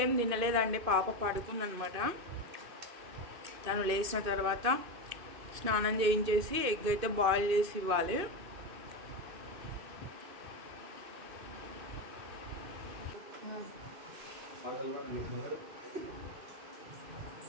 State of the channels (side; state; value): left; late; 2.6 ms